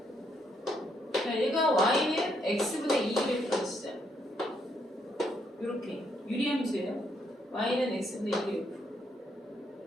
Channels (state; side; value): normal; both; correlation 0.74